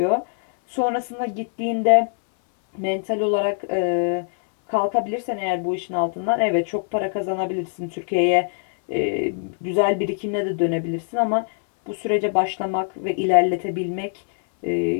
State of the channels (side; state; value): right; silent; 61 dB below the other